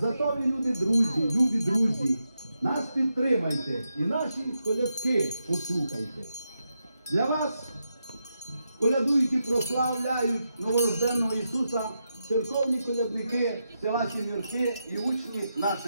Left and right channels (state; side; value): inverted; both; correlation -0.86